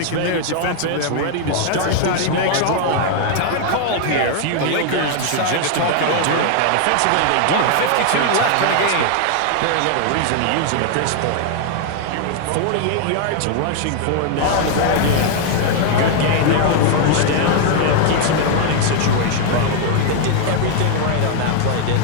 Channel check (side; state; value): both; different; correlation 0.00